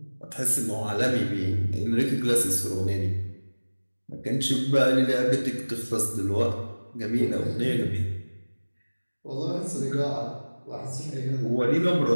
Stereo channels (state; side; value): inverted; both; correlation -1.00